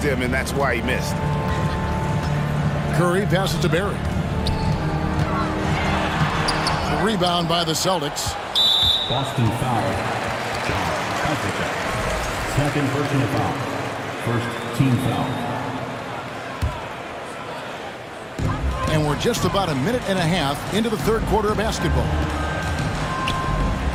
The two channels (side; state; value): both; identical; correlation 1.00